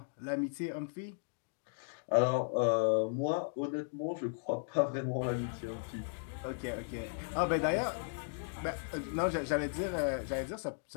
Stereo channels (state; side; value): silent; right; digital silence